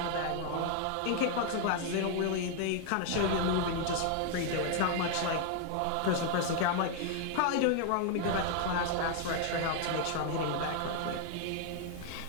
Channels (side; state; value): both; different; correlation 0.00